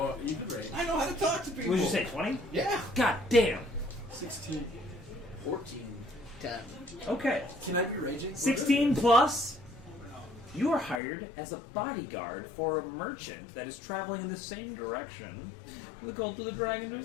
rate. I know how to talk to people. what did you say, 20? Yeah. God damn. 16. 14. 10. Okay, Can I be raging? 16 plus, you are hired as a bodyguard for a merchant that is traveling in the same direction the Cult of the Dragon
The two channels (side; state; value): right; drops out; at 11.0 s